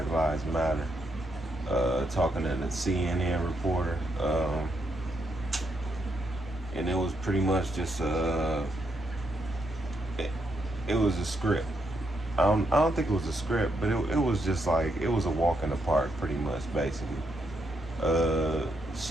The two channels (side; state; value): both; normal; correlation 0.79